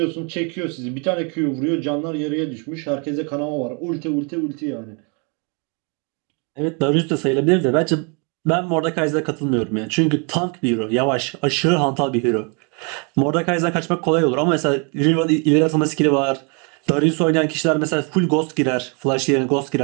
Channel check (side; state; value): left; quieter; 35.0 dB